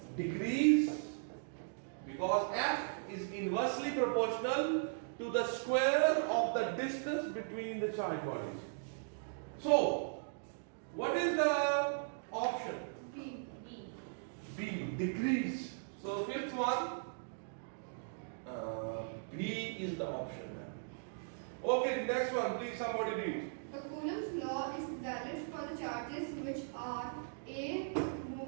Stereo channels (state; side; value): silent; left; digital silence